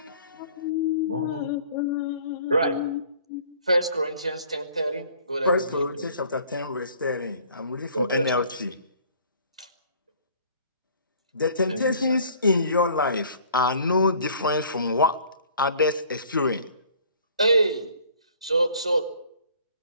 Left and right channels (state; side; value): inverted; both; correlation -0.54